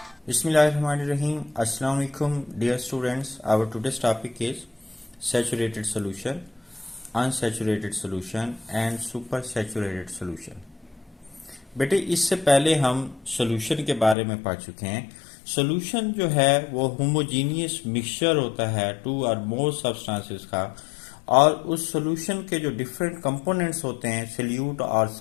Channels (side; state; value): right; drops out; at 14.2 s